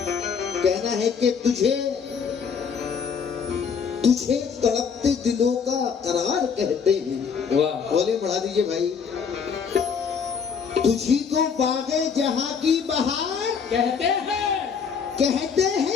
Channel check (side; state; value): right; quieter; 6.4 dB